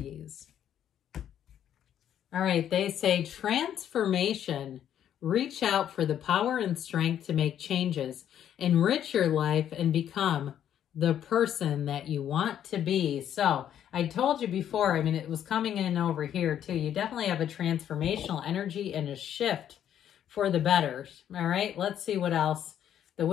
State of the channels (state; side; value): quieter; right; 10.1 dB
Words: All right, they say transformation. Reach out for the power and strength to make changes, enrich your life, and become the person that you want to be. So I told you before, I mean, it was coming in over here too. You definitely have a transformational energy and a shift for the better. All right, let's see what else the